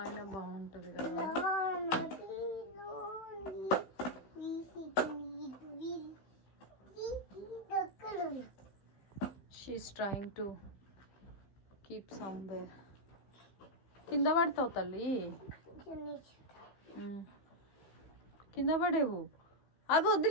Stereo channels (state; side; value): late; right; 15 ms